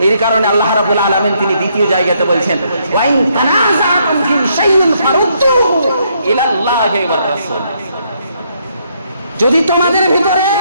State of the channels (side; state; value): both; inverted; correlation -0.73